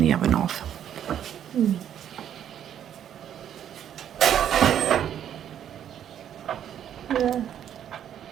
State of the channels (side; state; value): left; quieter; 9.9 dB